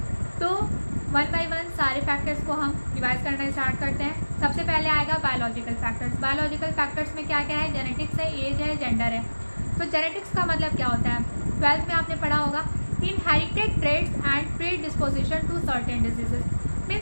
तो वन बाय वन सारे फैक्टर्स को हम रिवाइज करना स्टार्ट करते हैं। सबसे पहले आएगा बायोलॉजिकल फैक्टर्स। बायोलॉजिकल फैक्टर्स में क्या क्या है, जेनेटिक्स है, एज है, जेंडर है। तो जेनेटिक्स का मतलब क्या होता है, 12th में आपने पढ़ा होगा, inherited traits and predisposition to certain diseases,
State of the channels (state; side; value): inverted; both; correlation -1.00